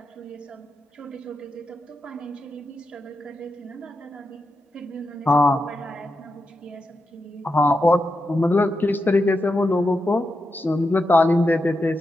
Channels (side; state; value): both; normal; correlation 0.87